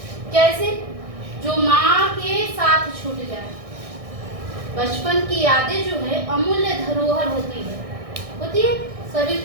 कैसे? जो माँ के साथ छूट जाए। बचपन की यादें जो है अमूल्य धरोहर होती है सभी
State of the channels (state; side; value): late; left; 1.6 ms